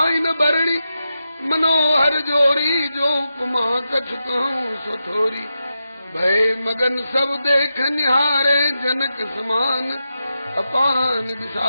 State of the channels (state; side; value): inverted; both; correlation -0.89